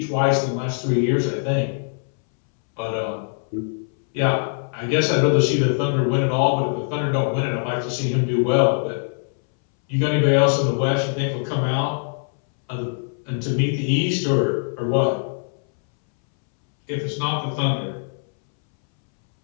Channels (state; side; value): silent; right; 64 dB below the other